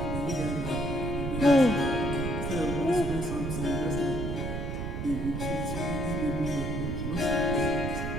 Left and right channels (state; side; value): noise; right; rumble, 3 dB below the sound